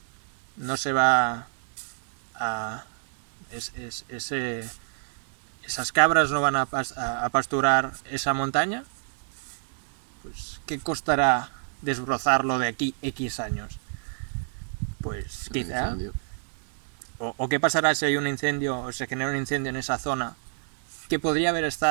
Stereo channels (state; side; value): silent; left; digital silence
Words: No se va a... esas cabras no van a pasturar esa montaña. Pues, ¿qué costará desbrozarlo de aquí X años? Pues quizá... O qué pasará si hay un incendio o se genera un incendio en esa zona que podría haber